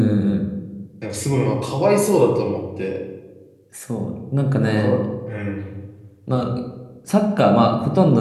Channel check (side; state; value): both; identical; correlation 1.00